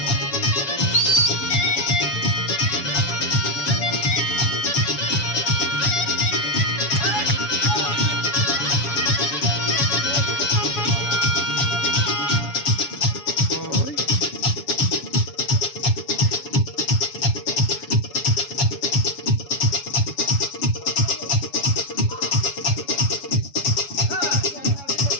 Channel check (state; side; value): late; right; 7.1 ms